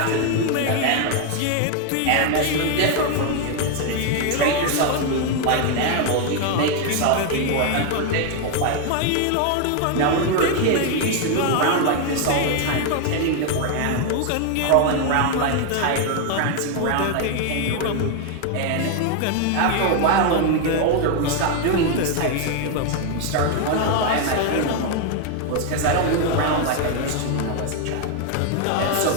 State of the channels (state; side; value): different; both; correlation 0.01